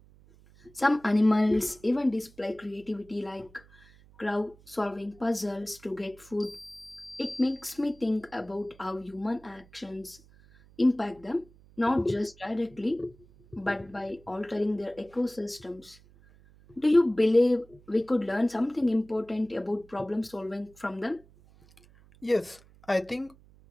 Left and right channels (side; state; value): right; noise; hum, 26 dB below the sound